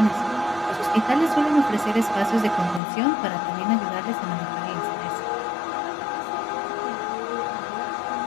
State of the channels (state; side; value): drops out; right; at 2.8 s